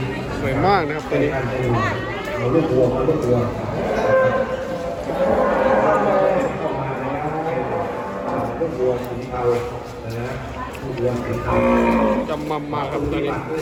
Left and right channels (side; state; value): both; identical; correlation 1.00